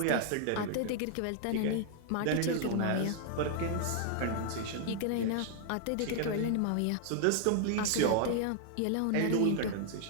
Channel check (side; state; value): both; different; correlation 0.00